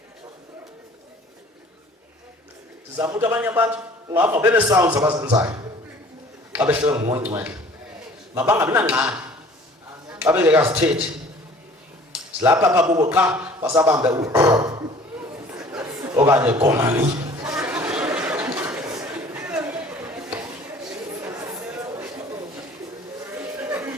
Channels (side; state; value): both; normal; correlation 0.50